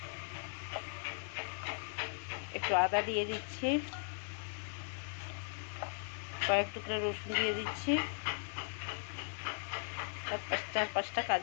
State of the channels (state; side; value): silent; right; 52 dB below the other